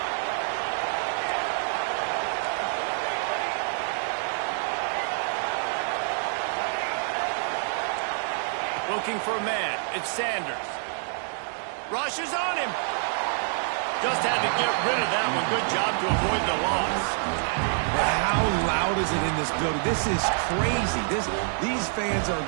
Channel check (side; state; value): left; silent; 60 dB below the other